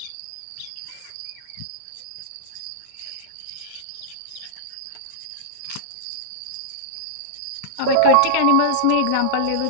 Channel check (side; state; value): both; different; correlation -0.02